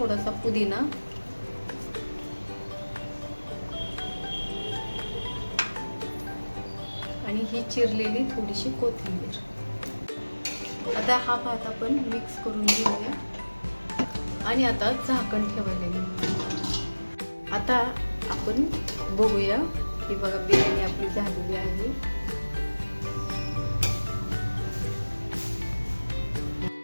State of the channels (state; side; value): inverted; both; correlation -1.00